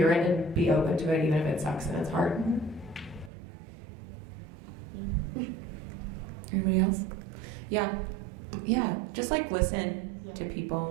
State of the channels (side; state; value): left; drops out; at 3.3 s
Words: it and be open to it, even if it sucks and it's hard. Anybody else? Yeah, just like listen to